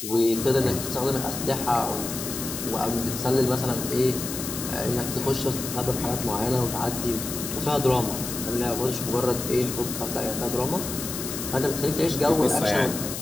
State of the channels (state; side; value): noise; left; hiss, 6 dB below the sound